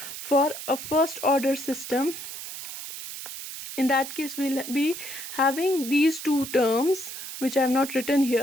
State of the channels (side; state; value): right; noise; hiss, 9 dB below the sound